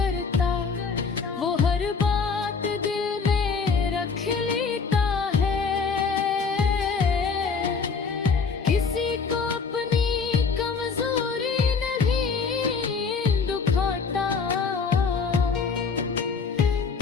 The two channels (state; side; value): quieter; right; 5.2 dB